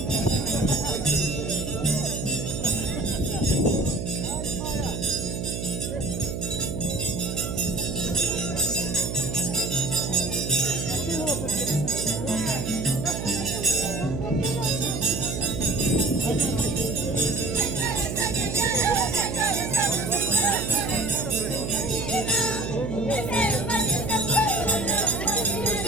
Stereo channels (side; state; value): right; noise; hum, 4 dB below the sound